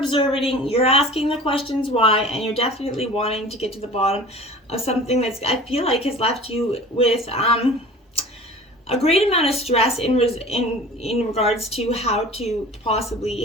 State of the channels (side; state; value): both; normal; correlation 0.41